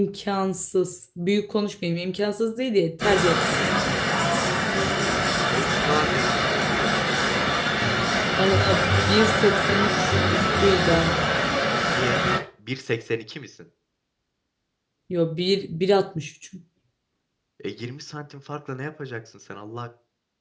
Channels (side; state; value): both; identical; correlation 1.00